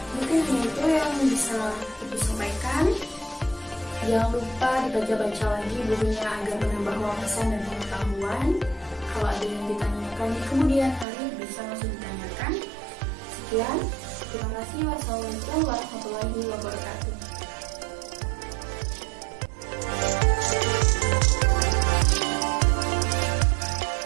Mungkin itu yang bisa Ibu sampaikan. Jangan lupa dibaca-baca lagi bukunya agar menambah wawasan dan pengetahuan. Kalau ada yang ditanyakan di kemudian hari, bisa langsung ditanyakan. Sekian, terima kasih. Wassalamualaikum warahmatullahi wabarakatuh.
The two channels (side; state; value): left; drops out; at 11.1 s